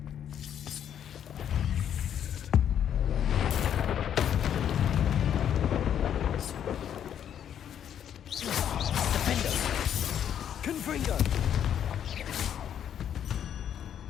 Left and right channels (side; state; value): right; quieter; 9.4 dB